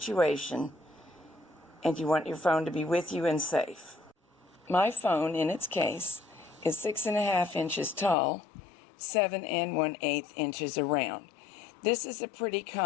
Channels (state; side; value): drops out; right; at 8.2 s